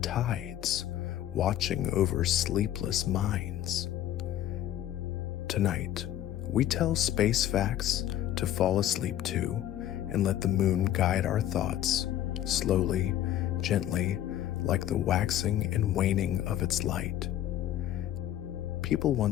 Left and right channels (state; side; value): quieter; right; 12.2 dB